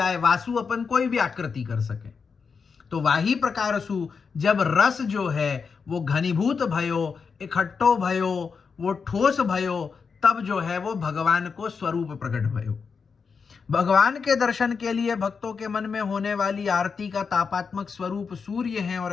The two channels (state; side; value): quieter; right; 5.5 dB